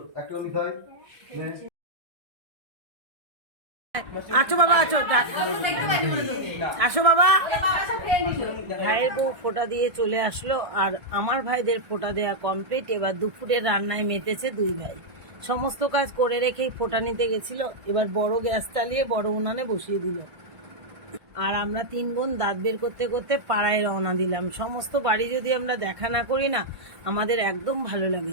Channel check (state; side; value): late; left; 1.5 ms